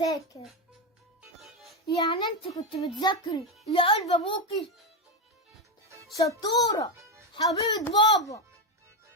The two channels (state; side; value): normal; both; correlation 0.10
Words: يعني انت كنت بتذاكري يا قلب ابوكي؟ شطورة حبيبة بابا.